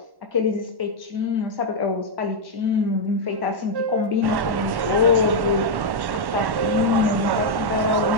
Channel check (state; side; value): late; left; 1.1 ms